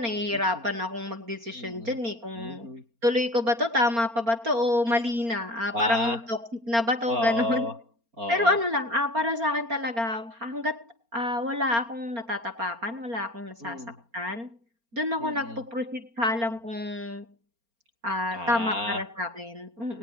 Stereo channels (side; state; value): left; late; 4.3 ms